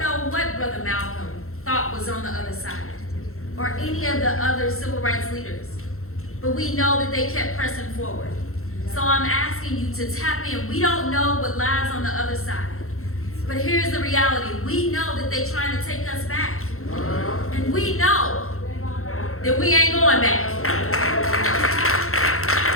what Brother Malcolm thought was on the other side, or any of the other civil rights leaders. But we know that they kept pressing forward. So I'm asking you to tap in. We don't know what lies on the other side. But here's the reality. We know that they're trying to take us back. And we know that we ain't going back.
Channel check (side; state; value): right; late; 0.63 ms